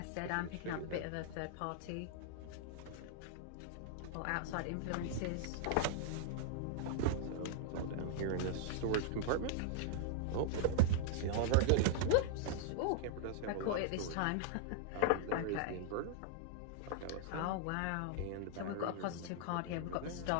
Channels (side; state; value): both; different; correlation -0.01